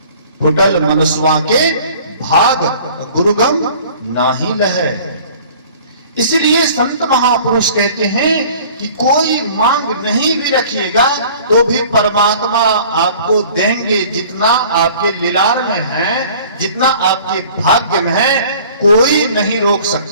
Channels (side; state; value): both; inverted; correlation -0.49